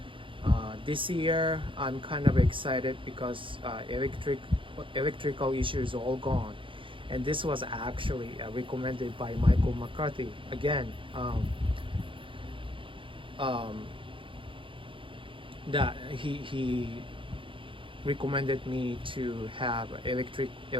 This year I'm kind of excited because electrical issue is all gone, And this was actually recommended by Michael McCarthy. Again, that he recommended me to have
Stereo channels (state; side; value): late; left; 0.25 ms